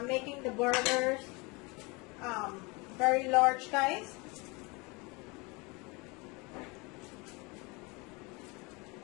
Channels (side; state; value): right; quieter; 27.2 dB